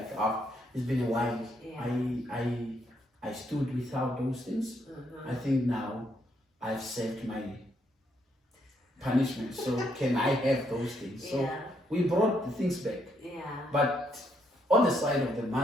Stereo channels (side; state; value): both; normal; correlation 0.74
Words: it's been a while. Yeah. I stood without those things. I think now I've saved my punishment. So can I have those things? Yeah. So we brought the things back. Yeah. But on the side of the